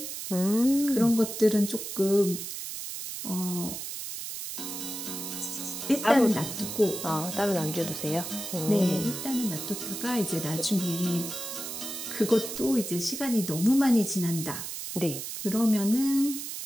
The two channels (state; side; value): noise; right; hiss, 7 dB below the sound